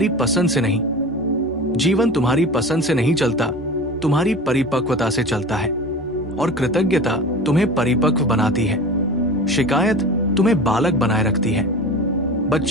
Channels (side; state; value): both; normal; correlation 0.34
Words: पसंद से नहीं। जीवन तुम्हारी पसंद से नहीं चलता, तुम्हारी परिपक्वता से चलता है। और कृतज्ञता तुम्हें परिपक्व बनाती है, शिकायत तुम्हें बालक बनाए रखती है।